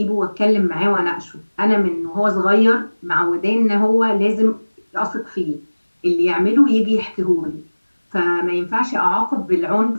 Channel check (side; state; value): both; inverted; correlation -1.00